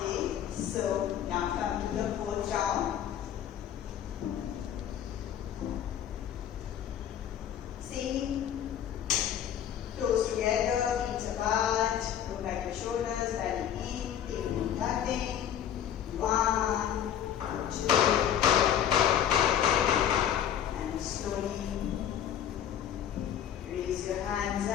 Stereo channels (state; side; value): quieter; right; 9.9 dB